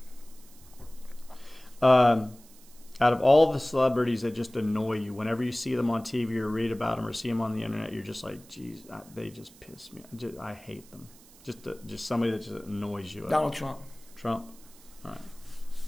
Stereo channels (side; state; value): right; noise; hiss, 24 dB below the sound